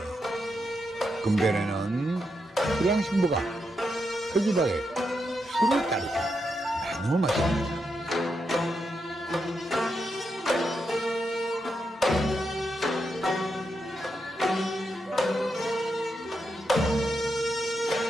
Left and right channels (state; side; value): normal; both; correlation 0.84